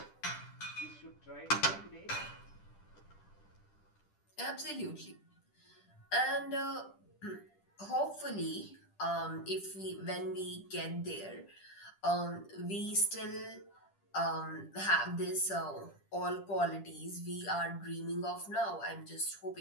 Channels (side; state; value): right; late; 10 ms